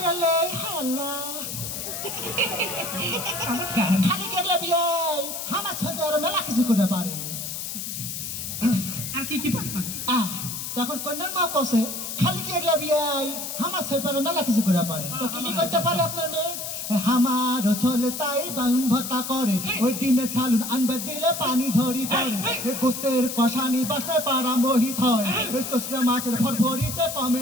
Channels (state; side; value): noise; left; hiss, 6 dB below the sound